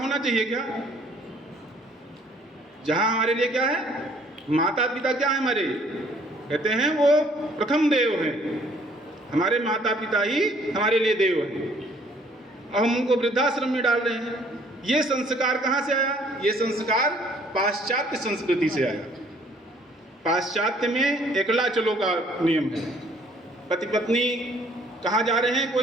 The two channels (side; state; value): both; normal; correlation 0.60